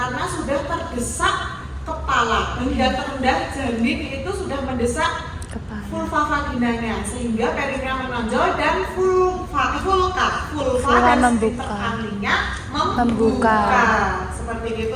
sudah terdesak kepala, hingga terendah janin itu sudah mendesak vulva vaginanya sehingga perineum menonjol dan vulva dan sphincter kalinya membuka. Seperti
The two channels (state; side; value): identical; both; correlation 1.00